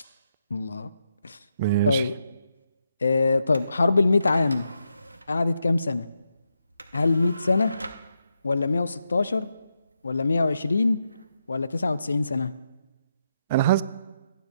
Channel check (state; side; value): inverted; both; correlation -0.83